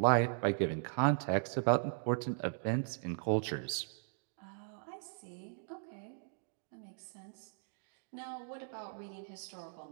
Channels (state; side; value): silent; left; digital silence